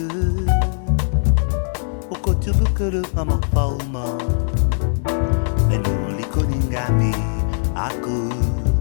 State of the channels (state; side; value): silent; right; digital silence